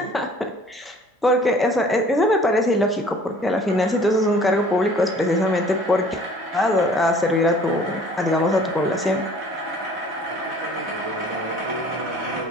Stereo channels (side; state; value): both; normal; correlation 0.51